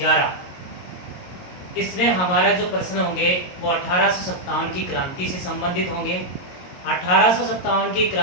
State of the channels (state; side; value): late; right; 22 ms